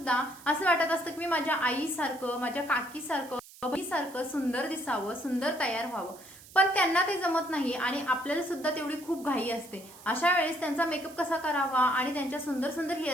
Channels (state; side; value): noise; right; hiss, 20 dB below the sound